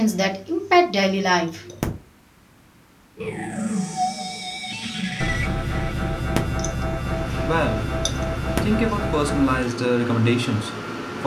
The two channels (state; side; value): identical; both; correlation 1.00